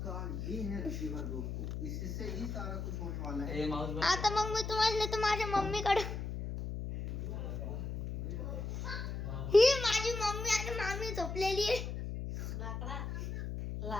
आता मग मी तुम्हाला नेतो माझ्या मम्मीकडे. ही माझी मम्मी आणि मामी झोपलेली आहे.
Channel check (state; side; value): noise; left; hum, 5 dB below the sound